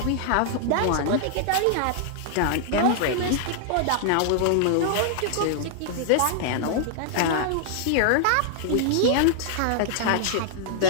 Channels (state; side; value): different; both; correlation -0.01